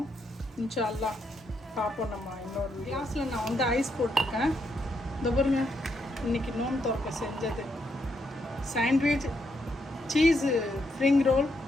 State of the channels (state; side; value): normal; both; correlation 0.78